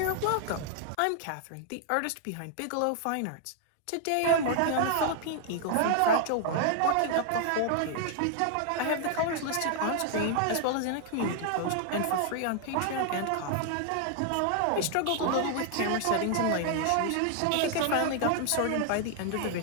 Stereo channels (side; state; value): both; different; correlation 0.00